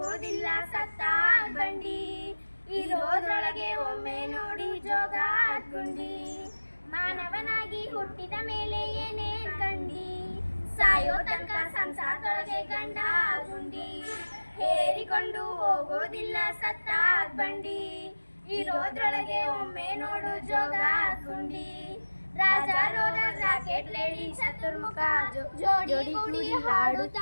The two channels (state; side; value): inverted; both; correlation -1.00